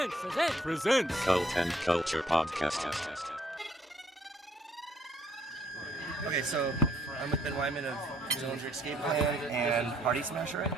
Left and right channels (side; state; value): both; normal; correlation 0.66